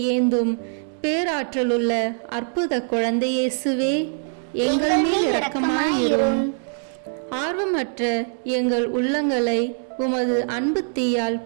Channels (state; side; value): silent; left; digital silence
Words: ஏந்தும் பேராற்றலுள்ள அற்புத குழந்தை இயேசுவே, எங்கள் மேல் இரக்கமாயிரும். ஆர்வமற்ற எங்கள் உள்ளங்களை உமது அன்பு தீயால்